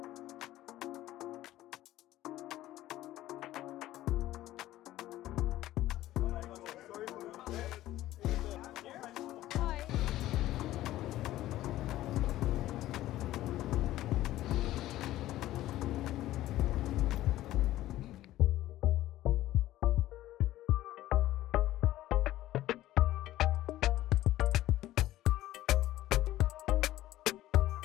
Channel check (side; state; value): right; quieter; 14.9 dB